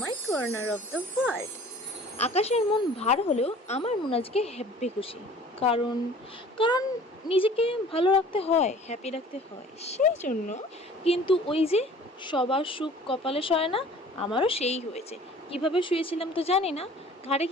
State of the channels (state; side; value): normal; both; correlation 0.48